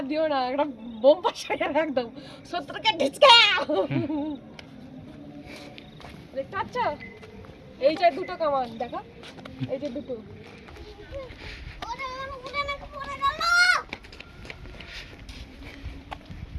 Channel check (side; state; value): both; identical; correlation 1.00